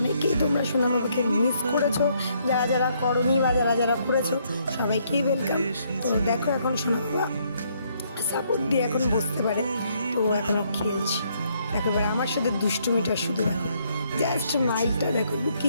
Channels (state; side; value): inverted; both; correlation -0.70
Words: তোমরা সোনা বাবাকে মিস করেছো, যারা যারা করনি বা যারা যারা করেছো সবাইকেই ওয়েলকাম। তো দেখো এখন সোনা বাবা সাপোর্ট দিয়ে এখন বসতে পারে। তো এখনও খেলছি। দেখো এবার আমার সাথে দুষ্টুমিটা শুধু দেখো। জাস্ট স্মাইলটা দেখো,